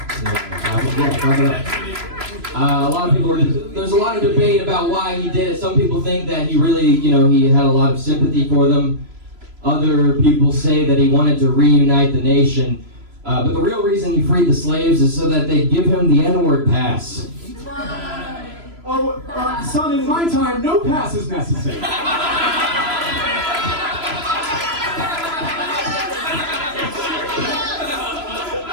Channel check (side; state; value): left; late; 3.0 ms